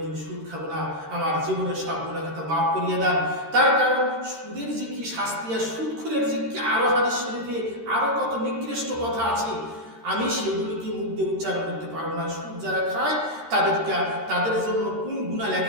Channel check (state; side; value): late; left; 13 ms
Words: সুদ খাবো না, আমার জীবনের সব গুনাহ খাতা মাফ করিয়ে দেন। তার কারণ সুদের যে কি শাস্তি আর সুদখোরের যে কি আরো হাদিস শরীফে আরো কত নিকৃষ্ট কথা আছে, আমি সেগুলোকে মুখ দিয়ে উচ্চারণ করতে পারবো না। সুদ যারা খায় তাদের জন্য কোন গুনাহ